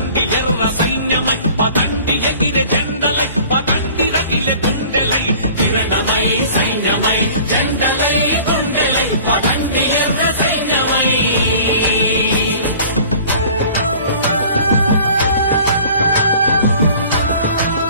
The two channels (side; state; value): both; inverted; correlation -0.47